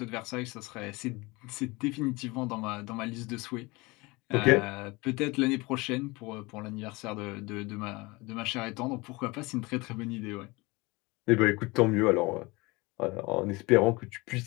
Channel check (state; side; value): quieter; right; 24.0 dB